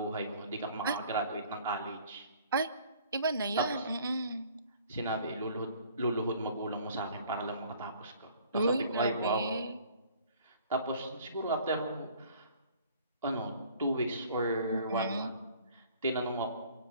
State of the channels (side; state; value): both; inverted; correlation -0.54